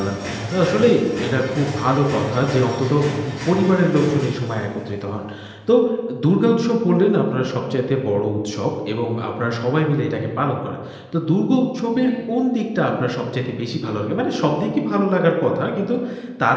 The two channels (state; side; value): identical; both; correlation 1.00